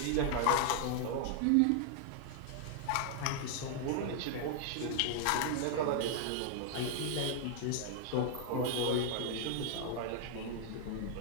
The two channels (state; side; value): different; both; correlation -0.01